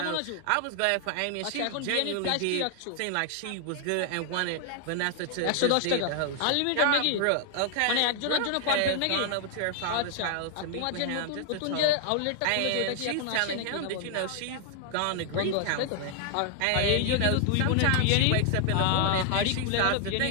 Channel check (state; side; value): different; both; correlation 0.00